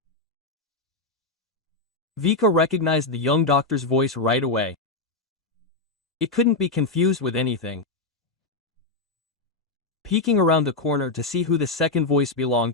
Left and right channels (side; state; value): right; quieter; 3.4 dB